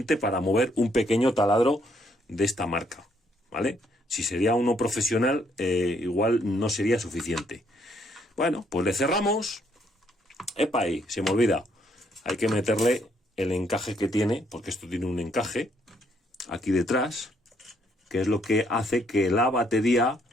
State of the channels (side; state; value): both; normal; correlation 0.70